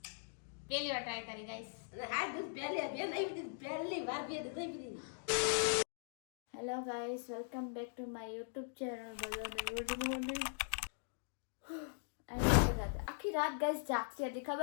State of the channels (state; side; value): silent; right; digital silence